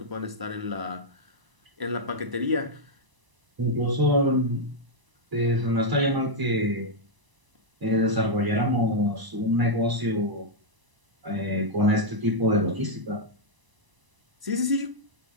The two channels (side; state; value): left; late; 1.0 ms